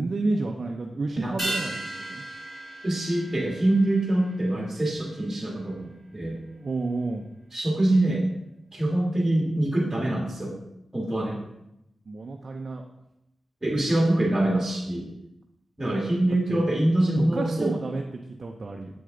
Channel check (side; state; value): both; normal; correlation 0.95